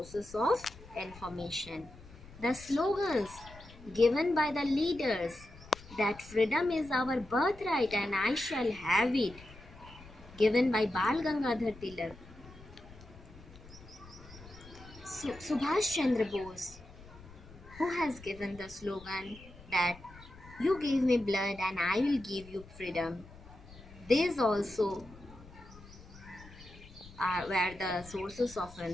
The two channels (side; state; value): left; noise; rumble, 19 dB below the sound